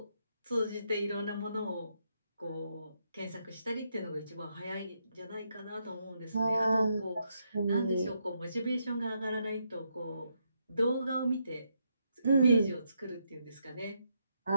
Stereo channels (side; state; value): both; inverted; correlation -0.79